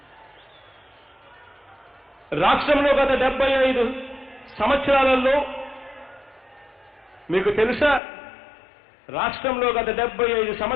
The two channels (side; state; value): right; drops out; at 8.0 s